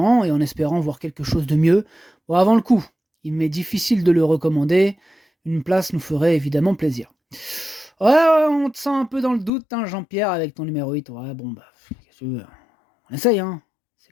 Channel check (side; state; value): right; drops out; at 9.5 s